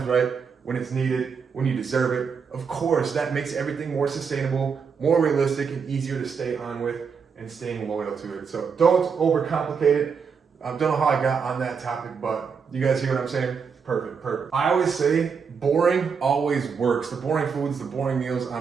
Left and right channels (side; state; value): left; quieter; 6.0 dB